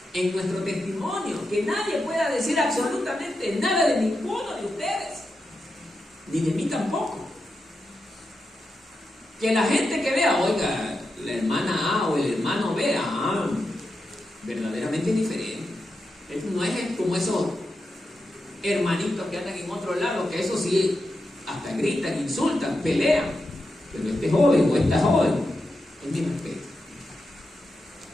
En nuestro testimonio, que nadie pueda decir absolutamente nada de ninguno de ustedes, ni de mí tampoco. Que la gente que vea, oiga, la hermana A o el hermano B, verdaderamente diferente. Esto no es como esos hermanitos que andan en otro lado, que eso sí, hasta gritan, insultan, pelean. Pero este joven o esta joven, es mi respeto.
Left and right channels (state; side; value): normal; both; correlation 0.88